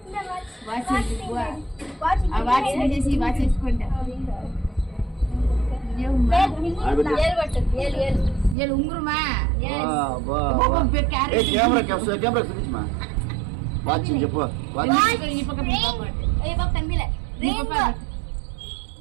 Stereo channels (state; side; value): drops out; left; at 8.6 s